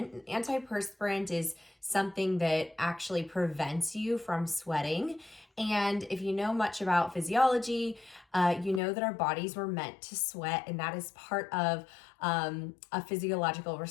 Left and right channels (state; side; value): drops out; right; at 8.8 s